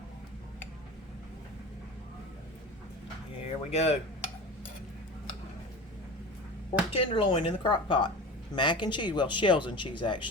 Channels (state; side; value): normal; both; correlation 0.33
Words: Here we go. Pork tenderloin in the crock pot. Mac and cheese, well, shells and cheese